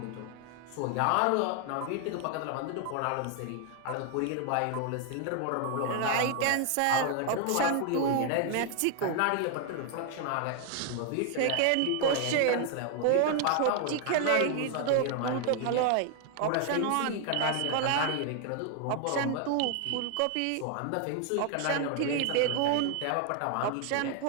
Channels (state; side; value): different; both; correlation 0.00